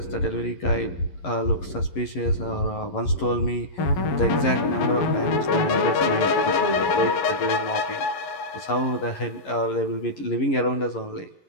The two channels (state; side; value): late; right; 11 ms